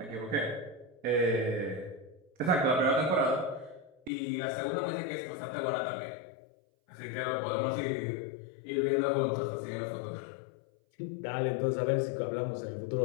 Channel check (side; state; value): right; drops out; at 4.1 s